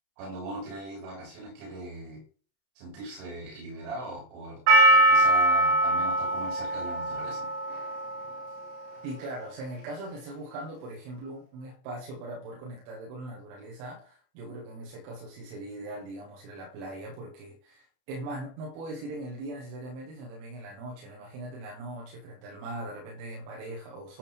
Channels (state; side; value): late; left; 31 ms